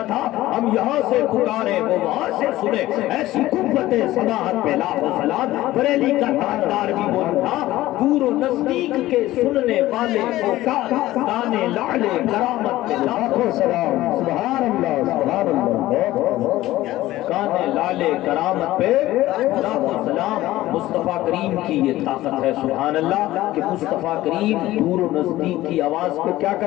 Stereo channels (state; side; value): quieter; right; 16.1 dB